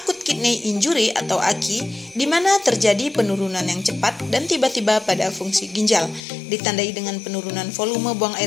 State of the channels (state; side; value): drops out; right; at 6.2 s